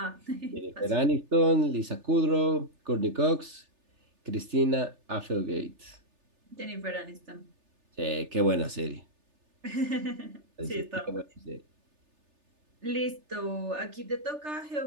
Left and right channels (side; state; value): left; late; 3.3 ms